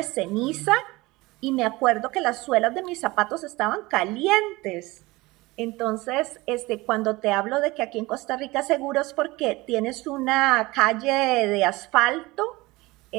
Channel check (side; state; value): left; quieter; 21.4 dB